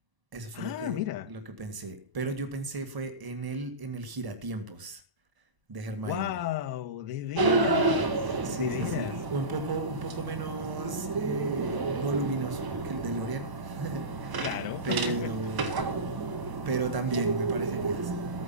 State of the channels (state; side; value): late; left; 1.0 ms